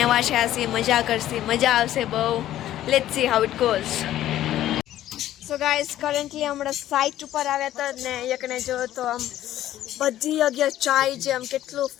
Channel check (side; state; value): right; quieter; 13.1 dB